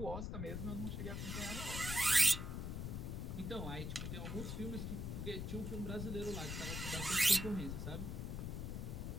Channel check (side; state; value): left; noise; rumble, 3 dB below the sound